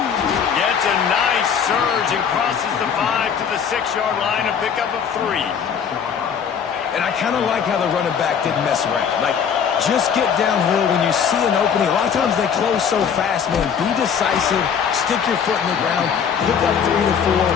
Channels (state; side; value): quieter; right; 7.3 dB